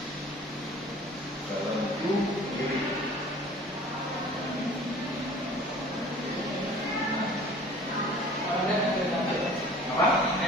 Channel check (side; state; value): both; normal; correlation 0.47